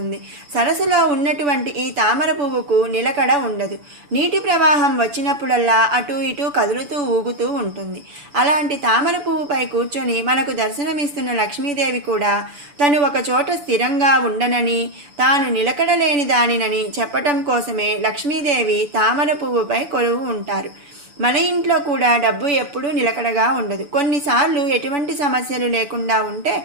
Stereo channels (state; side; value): late; left; 6.9 ms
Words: సరస్సులో ఉన్నటువంటి ఈ తామర పువ్వుకు నిలకడ ఉండదు. నీటి ప్రవాహం వచ్చినప్పుడల్లా అటు ఇటు కదులుతూ ఊగుతూ ఉంటుంది. అలాంటి తామర పువ్వుపై కూర్చొని మనకు దర్శనమిస్తున్న లక్ష్మీదేవి కూడా తను ఒక చోట స్థిరంగా ఉండనని, తాను నిలకడలేని దానినని చెప్పటం కోసమే లక్ష్మీదేవి తామర పువ్వుపై కొలువు ఉంటారు. మన ఇంట్లో కూడా డబ్బు ఎప్పుడూ నిలకడగా ఉండదు. కొన్నిసార్లు ఎటువంటి సమస్యలు లేకుండా ఉంటే